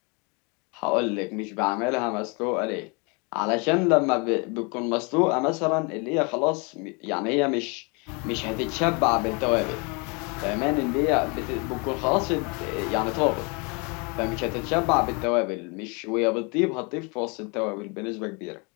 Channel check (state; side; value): quieter; right; 31.4 dB